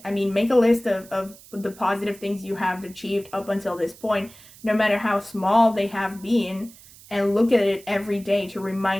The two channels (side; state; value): right; noise; hiss, 22 dB below the sound